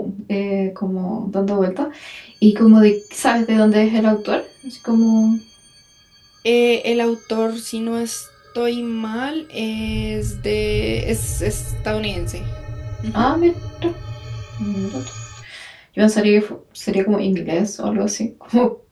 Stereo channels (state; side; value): identical; both; correlation 1.00